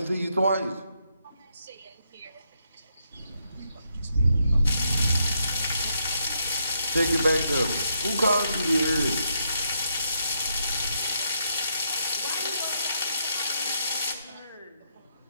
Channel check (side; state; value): both; inverted; correlation -0.78